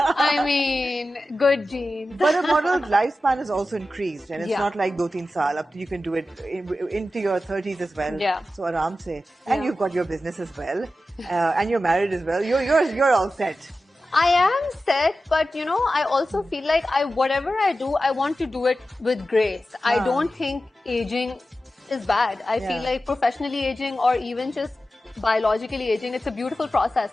mean, good genes. But a model's lifespan is also increased, and it's not like 2-3 saal. Up to you can do it into your 30s as well. Yeah. So aram se. And you've got your business as well. And you're married as well. You're all set. I am set, but you know, I also feel like whatever I do, I want to do it with grace. I don't think aging is bad. I feel like professionally aging or even just biologically aging, it's a beautiful process.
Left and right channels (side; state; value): both; normal; correlation 0.93